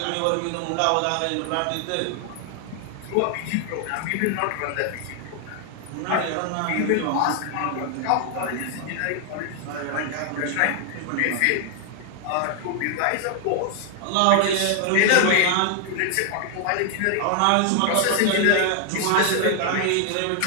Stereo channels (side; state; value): both; different; correlation 0.00